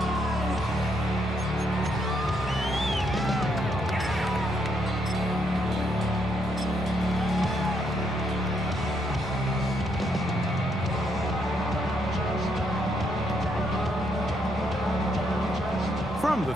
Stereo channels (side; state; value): both; normal; correlation 0.75